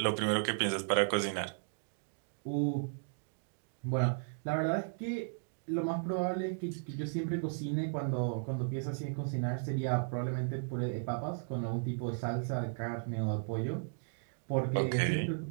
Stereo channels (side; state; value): left; silent; digital silence